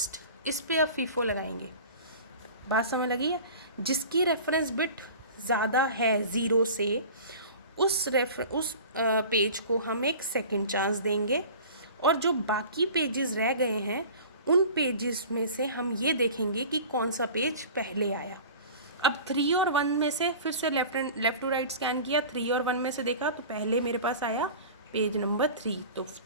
इस पे अब फीफो लगाएंगे. बात समझ लगी है. जिसकी रेफरेंस बिट ज़्यादा है 0 से, उस पेज को हम एक सेकंड चांस देंगे, और जो बाकी पेजेस रह गए हैं उन पेजेस में से हम ये देखेंगे कि कौन सा पेज पहले आया. अब 3 और 1 में से फिर से लेफ़्ट टू राइट स्कैन किया, 3 और 1 में से देखा तो पहले मेरे पास आया पेज नंबर 3, तो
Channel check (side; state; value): both; inverted; correlation -0.40